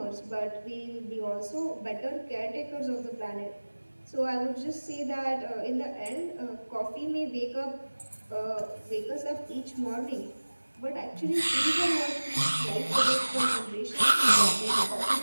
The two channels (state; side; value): inverted; both; correlation -1.00